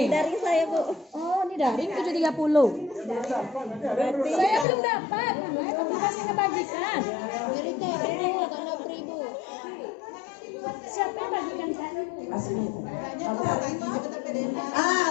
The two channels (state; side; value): drops out; right; at 4.7 s